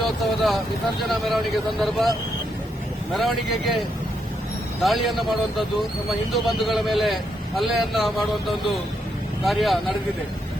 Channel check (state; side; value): normal; both; correlation 0.79